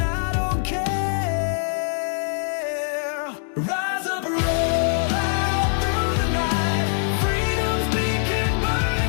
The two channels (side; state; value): right; silent; digital silence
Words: don't care. Rise up, roll out through the night. Freedom's beacon